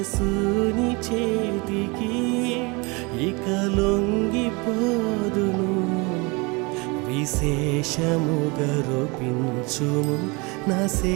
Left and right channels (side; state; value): left; quieter; 27.4 dB